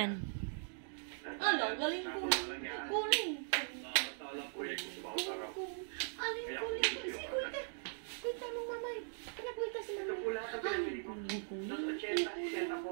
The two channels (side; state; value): left; silent; digital silence